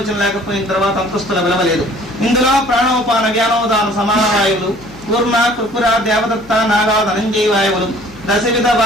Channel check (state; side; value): noise; left; hum, 23 dB below the sound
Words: లేకపోయిన తర్వాత అంతస్తుల విలువలేదు. ఇందులో ప్రాణోపాన వ్యానోదాన సమాన వాయువులు, కూర్మ కృపుర దేవదత్త నాగా ధనంజయ వాయువులు, దశవిధ